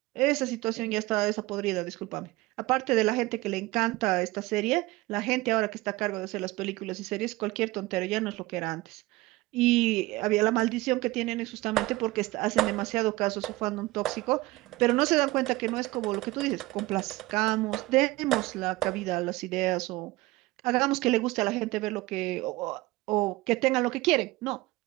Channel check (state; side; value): quieter; left; 19.9 dB